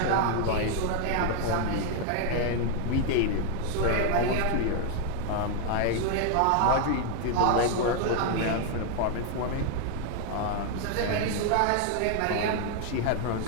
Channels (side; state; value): both; different; correlation 0.00